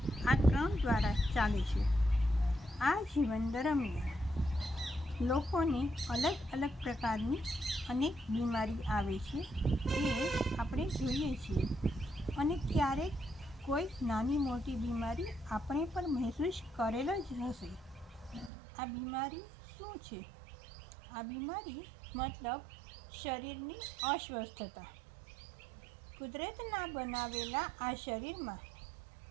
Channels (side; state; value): left; drops out; at 18.5 s